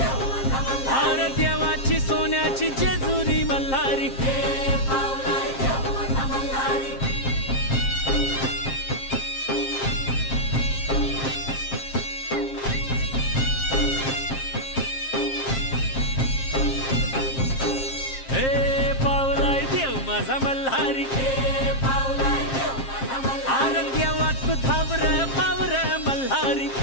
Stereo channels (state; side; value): late; right; 7.5 ms